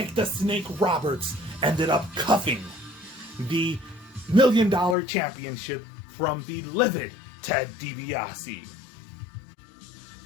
the Snake Roberts ended up cuffing the $1 Million Championship from the livid Ted DiBiase.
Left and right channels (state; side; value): drops out; right; at 5.0 s